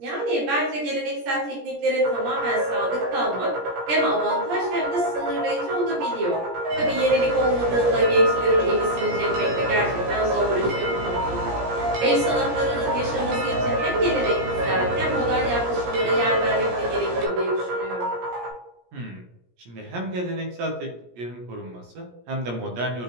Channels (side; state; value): left; late; 17 ms